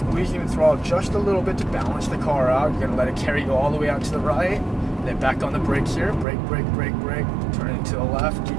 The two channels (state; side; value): drops out; left; at 6.2 s